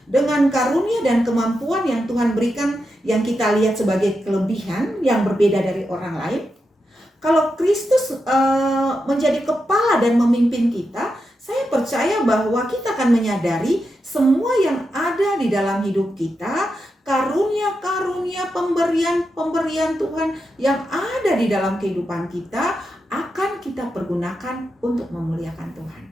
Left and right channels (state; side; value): normal; both; correlation 0.87